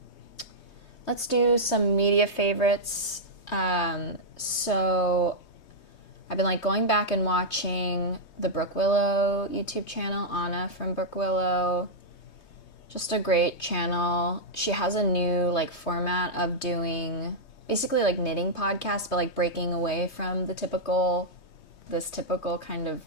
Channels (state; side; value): late; right; 3.2 ms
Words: some media favorites. So I've been like going back and watching the Brook Willow YouTube channel, Anna from Brook Willow. Just a great channel. She has a new like format of doing basically like knitting podcasts, but like breaking away from this typical kind of